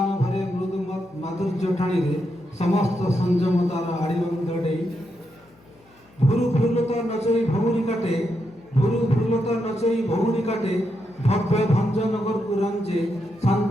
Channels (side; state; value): left; noise; hum, 30 dB below the sound